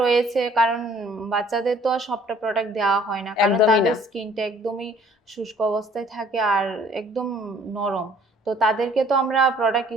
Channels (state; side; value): normal; both; correlation 0.57